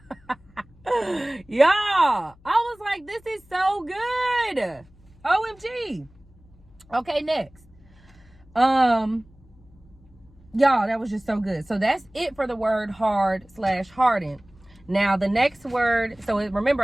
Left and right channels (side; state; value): left; noise; hum, 27 dB below the sound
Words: that? Y'all, I was like, this is so good. OMG. Okay, next. Y'all, that was just so good. So that's it for the word hard/harden. Now the next word, so remember